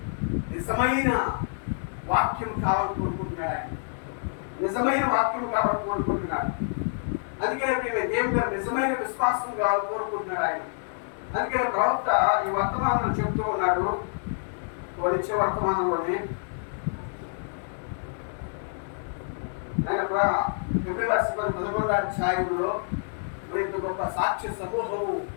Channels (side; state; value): right; silent; 60 dB below the other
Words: నిజమైన వాక్యం కావాలని కోరుకుంటున్నాడు. నిజమైన వాక్యం కావాలని కోరుకుంటున్నాడు. అందుకనే ప్రేమే దేవుడు నిజమైన విశ్వాసం కావాలని కోరుకుంటున్నాడు ఆయన. అందుకనే ప్రవక్త ఈ వర్తమానం చెప్తూ ఉన్నాడు. ఇచ్చే వర్తమానంలోనే ఆయన 11వ అధ్యాయంలో ఇంత గొప్ప సాక్ష్య సమూహము